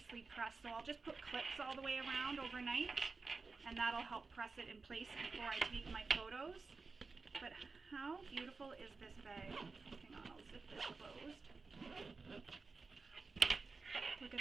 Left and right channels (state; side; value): quieter; left; 4.2 dB